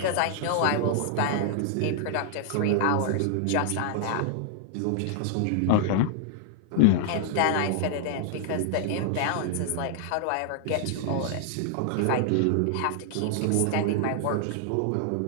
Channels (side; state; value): both; different; correlation 0.00